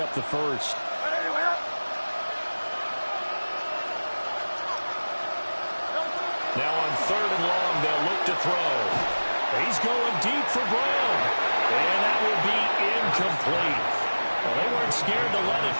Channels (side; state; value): both; inverted; correlation -1.00